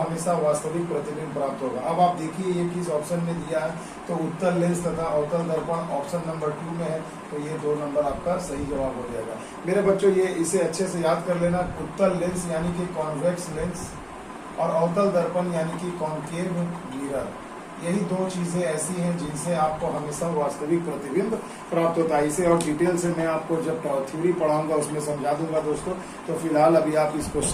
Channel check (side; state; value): both; identical; correlation 1.00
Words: वास्तविक प्रतिबिंब प्राप्त होगा। अब आप देखिए ये किस ऑप्शन में दिया है, तो उत्तल लेंस तथा अवतल दर्पण ऑप्शन नंबर 2 में है। तो ये 2 नंबर आपका सही जवाब हो जाएगा। मेरे बच्चों ये इसे अच्छे से याद कर लेना। उत्तल लेंस यानी कि कॉन्वेक्स लेंस और अवतल दर्पण यानी कि कॉन्केव मिरर, यही 2 चीजें ऐसी हैं जिनसे आपको हमेशा वास्तविक प्रतिबिंब प्राप्त होता है। इसे और डिटेल से मैं आपको जब थ्योरी पढ़ाऊंगा उसमें समझा दूंगा दोस्तों। तो फिलहाल अभी आप इस